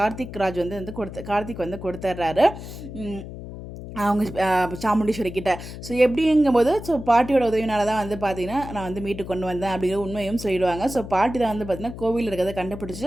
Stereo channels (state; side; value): noise; left; hum, 11 dB below the sound